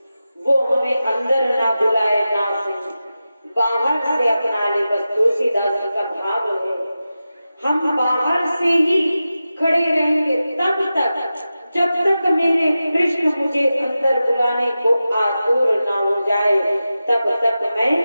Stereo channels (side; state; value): both; inverted; correlation -0.93